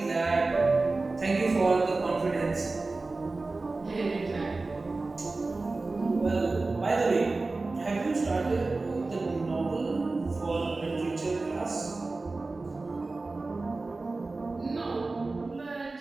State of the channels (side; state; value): left; quieter; 3.5 dB